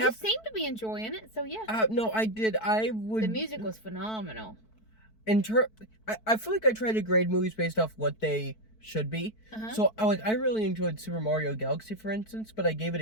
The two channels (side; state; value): right; late; 4.6 ms